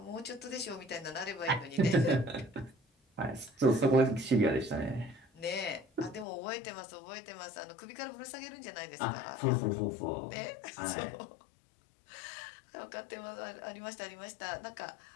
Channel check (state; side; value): drops out; right; at 6.2 s